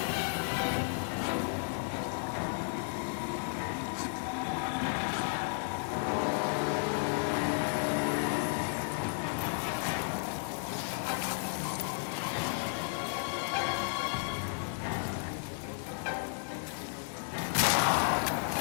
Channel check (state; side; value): silent; right; 55 dB below the other